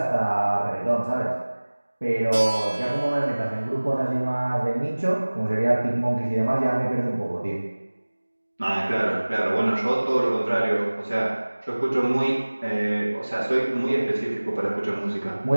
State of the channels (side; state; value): both; inverted; correlation -1.00